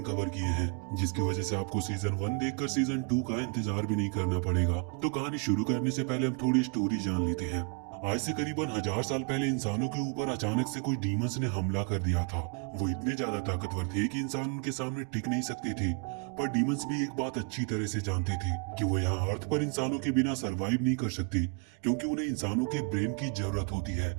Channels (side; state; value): left; quieter; 37.0 dB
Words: कवर किए हैं, जिसकी वजह से आपको सीजन 1 देखकर सीजन 2 का इंतजार भी नहीं करना पड़ेगा। तो कहानी शुरू करने से पहले हम थोड़ी स्टोरी जान लेते हैं। आज से करीबन 1000 साल पहले इंसानों के ऊपर अचानक से कोई डीमंस ने हमला कर दिया था। वो इतने ज्यादा ताकतवर थे कि इंसान उनके सामने टिक नहीं सकते थे। पर डीमंस भी एक बात अच्छी तरह से जानते थे कि वो यहाँ अर्थ पर इंसानों के बिना सरवाइव नहीं कर सकते, क्योंकि उन्हें इंसानों के ब्रेन की जरूरत होती है।